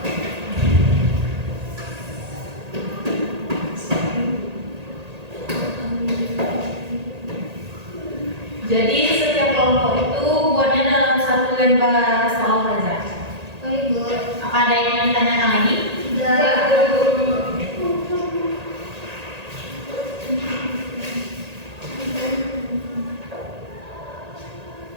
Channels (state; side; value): late; left; 1.8 ms